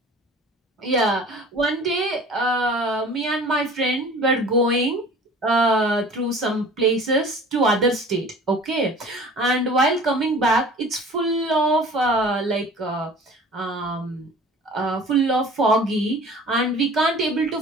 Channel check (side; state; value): both; normal; correlation 0.44